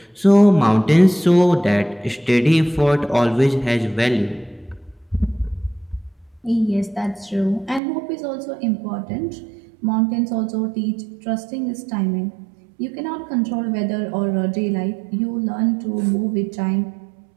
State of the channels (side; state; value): left; drops out; at 7.8 s